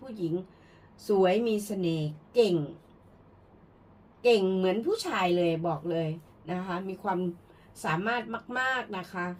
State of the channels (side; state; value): both; identical; correlation 1.00